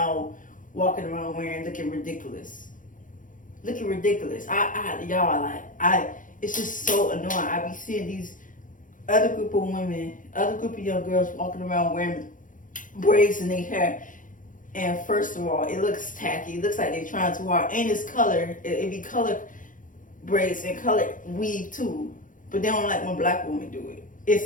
walking around wearing, looking ridiculous. Looking ridiculous. It's just so annoying. I be seeing these other group of women, other group of young girls walking around wearing braids in their hair. And first of all, it looks tacky. It looks like they're trying too hard. And it's color. It be color braids and color weave too. But they don't like when black women do it.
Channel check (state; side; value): late; right; 0.38 ms